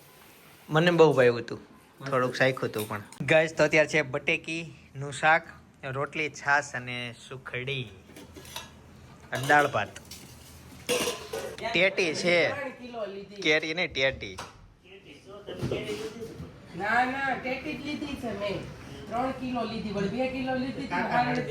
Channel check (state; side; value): identical; both; correlation 1.00